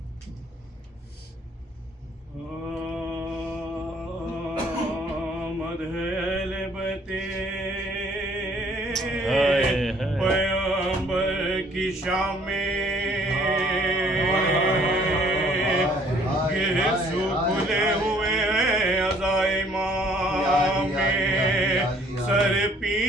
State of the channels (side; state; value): both; normal; correlation 0.60